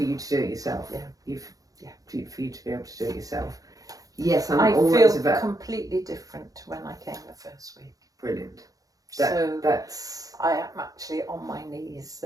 you to do it yourself. Yeah. For you to be able to do it yourself. Yes, I always feel about completely different to when I came the first week. brilliant. That's I am actually on my knees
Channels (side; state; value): left; late; 0.17 ms